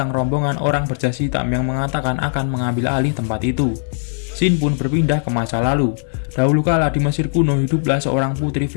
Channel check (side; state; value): right; silent; digital silence